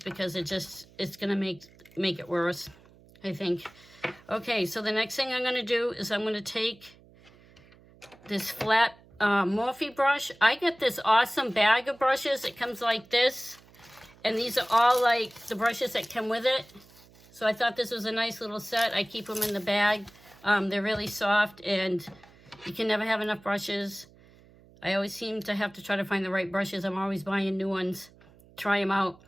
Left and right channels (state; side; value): noise; right; hum, 26 dB below the sound